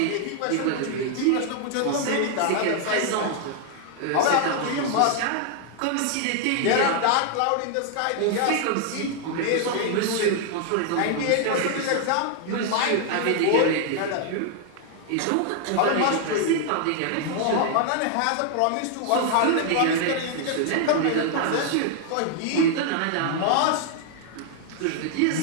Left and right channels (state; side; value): different; both; correlation 0.00